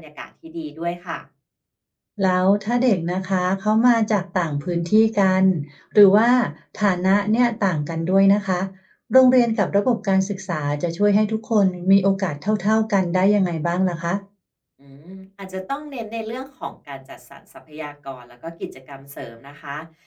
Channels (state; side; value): identical; both; correlation 1.00